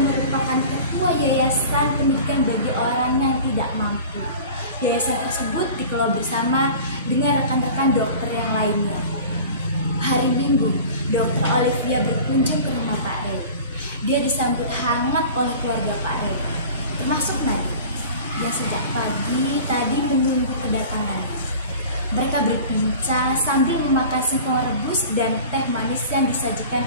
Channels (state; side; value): inverted; both; correlation -0.39